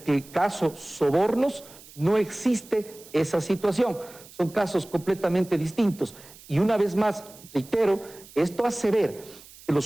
caso Sobornos no existe esa situación. Son casos completamente distintos. Y una vez más, reitero, esto hace ver que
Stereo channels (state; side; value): noise; right; hiss, 21 dB below the sound